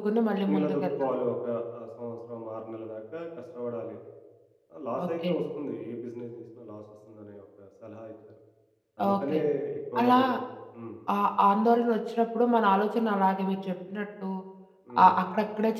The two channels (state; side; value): identical; both; correlation 1.00